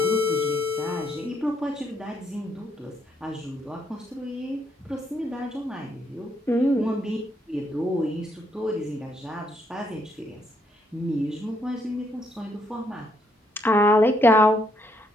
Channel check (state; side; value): normal; both; correlation 0.73